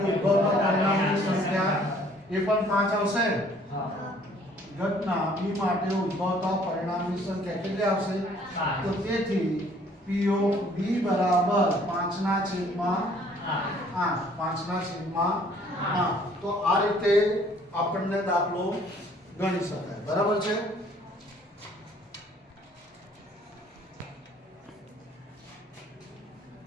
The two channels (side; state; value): both; normal; correlation 0.59